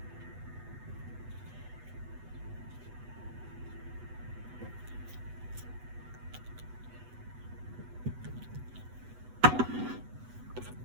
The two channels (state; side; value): late; left; 8.1 ms